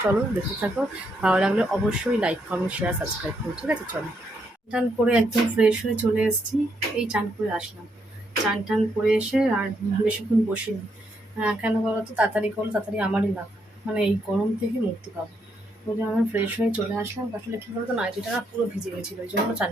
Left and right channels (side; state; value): both; normal; correlation 0.77